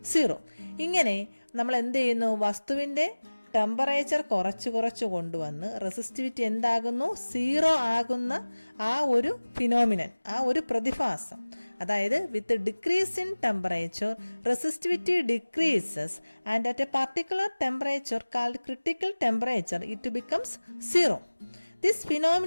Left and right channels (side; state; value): both; inverted; correlation -1.00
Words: 0. ഇങ്ങനെ നമ്മൾ എന്ത് ചെയ്യുന്നു? വസ്തുവിൻ്റെ ടെമ്പറേച്ചർ കുറച്ച് കൊണ്ടുവന്ന് റെസിസ്റ്റിവിറ്റി എന്താകുന്നു? 0 ആകുന്ന ആ ഒരു ഫിനോമിനൻ, ആ ഒരു പ്രതിഭാസം. അതായത് with decrease in temperature resistivity decreases and at a particular temperature called critical temperature it becomes 0. This